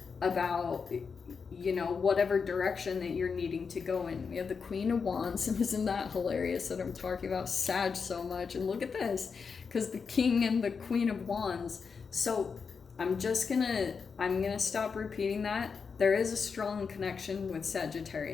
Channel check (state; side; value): quieter; right; 5.6 dB